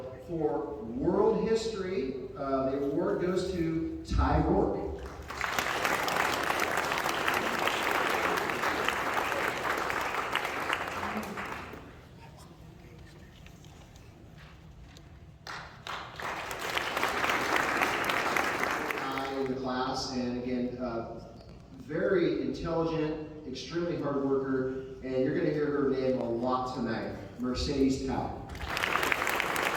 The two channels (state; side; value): identical; both; correlation 1.00